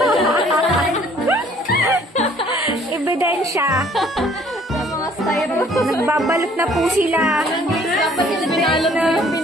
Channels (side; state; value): both; normal; correlation 0.58